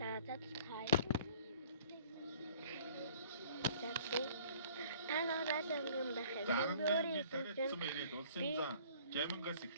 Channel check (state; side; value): inverted; both; correlation -0.53